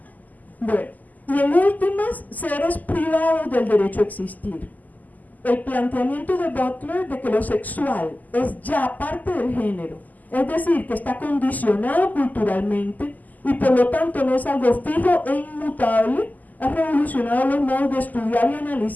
Bueno, y en últimas, seres privados del derecho a existir. El planteamiento de Butler de que lo sexual es ya parte del género, es decir, que está condicionado culturalmente y por lo tanto no es algo fijo e inmutable, ha revolucionado los modos de estudiar y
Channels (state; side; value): late; right; 0.081 ms